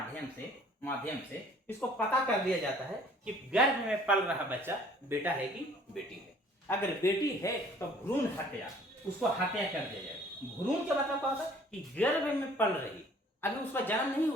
माध्यम से इसको पता कर दिया जाता है कि गर्भ में पल रहा बच्चा बेटा है कि बेटी है। अगर बेटी है तो भ्रूण हत्या, उसको हत्या कर दिया जाए। भ्रूण क्या मतलब क्या होता है कि गर्भ में पल रही, अभी उसका जन्म नहीं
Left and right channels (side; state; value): both; normal; correlation 0.54